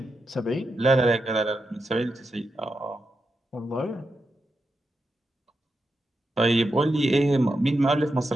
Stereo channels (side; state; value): both; normal; correlation 0.87